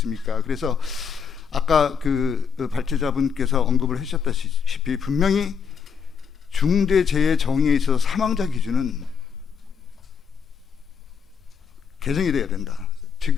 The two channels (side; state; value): right; quieter; 6.6 dB